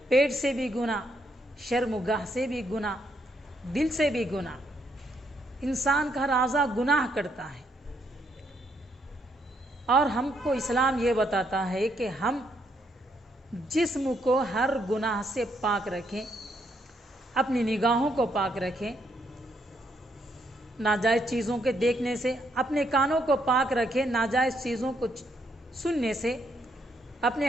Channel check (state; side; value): normal; both; correlation 0.74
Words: پیٹ سے بھی گناہ، شرم و گاہ سے بھی گناہ، دل سے بھی گناہ۔ انسان کا ہر اعضاء گناہ کرتا ہے، اور ہم کو اسلام یہ بتاتا ہے کہ ہم جسم کو ہر گناہ سے پاک رکھیں، اپنی نگاہوں کو پاک رکھیں ناجائز چیزوں کے دیکھنے سے، اپنے کانوں کو پاک رکھیں ناجائز چیزوں کو سننے سے، اپنے